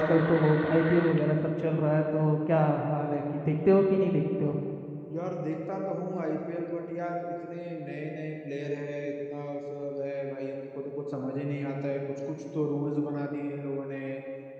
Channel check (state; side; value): identical; both; correlation 1.00